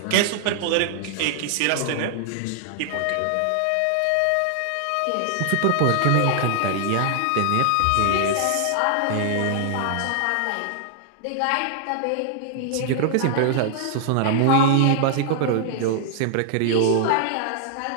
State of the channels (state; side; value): different; both; correlation -0.01